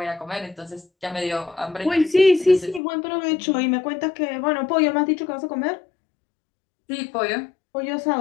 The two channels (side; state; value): right; drops out; at 2.8 s